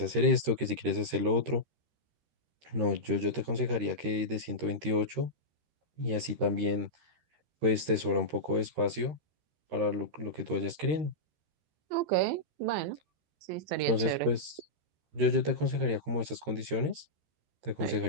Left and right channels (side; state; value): left; late; 13 ms